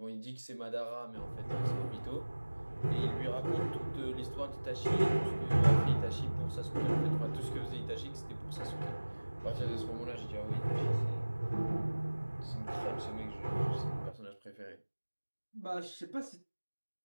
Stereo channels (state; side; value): inverted; both; correlation -1.00